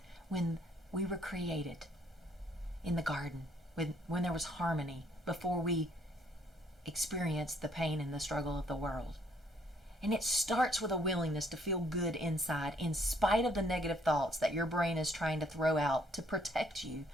when we were created in the garden, when there was harmony, before we experienced the pain and the struggle of the world. And it starts with a willingness to feel good inside, in spite of the negative thoughts that your brain is trying to throw out to protect you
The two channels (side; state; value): both; normal; correlation 0.65